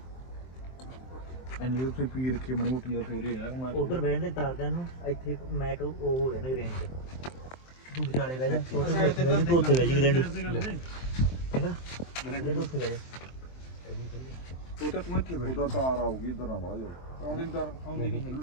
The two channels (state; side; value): late; right; 23 ms